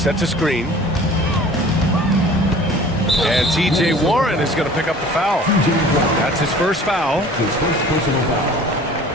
a screen. And T.J. Warren is going to pick up the foul. That's his first foul. His first personal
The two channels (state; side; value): normal; both; correlation 0.46